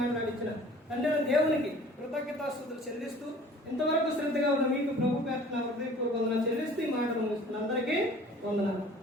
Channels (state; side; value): normal; both; correlation 0.49